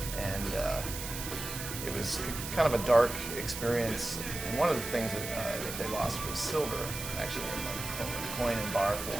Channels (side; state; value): right; noise; hiss, 7 dB below the sound